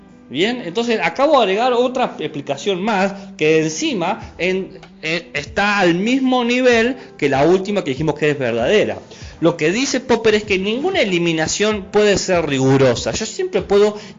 Bien, entonces acabo de agregar otra explicación más que encima está al mismo nivel que la última que dijimos que es verdadera. Lo que dice Popper es que ninguna eliminación puede ser rigurosa. Yo siempre puedo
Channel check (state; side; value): identical; both; correlation 1.00